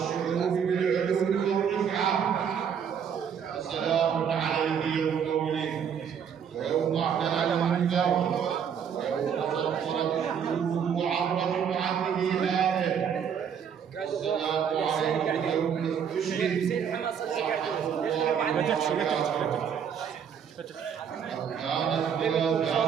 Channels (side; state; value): left; quieter; 7.7 dB